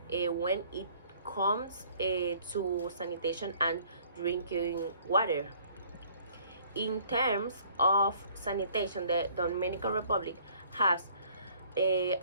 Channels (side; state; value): both; inverted; correlation -0.58